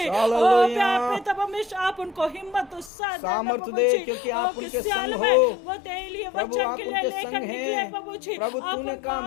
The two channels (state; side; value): drops out; right; at 2.9 s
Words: ओ प्यार पिता परमेश्वर, आप उनको हिम्मत और साथ देना प्रभु जी, क्योंकि आप उनके संग हो। वो तेरे लिए वचन के लिए लेकर निकले प्रभु जी। प्रभु तूने